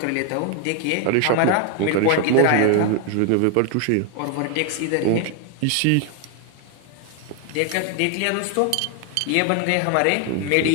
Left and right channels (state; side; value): different; both; correlation 0.01